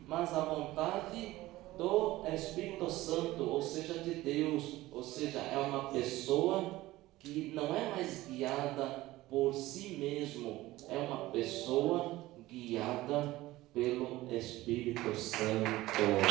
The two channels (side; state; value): left; quieter; 17.6 dB